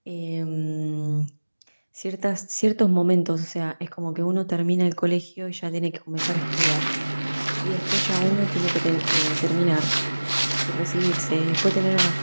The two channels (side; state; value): both; inverted; correlation -1.00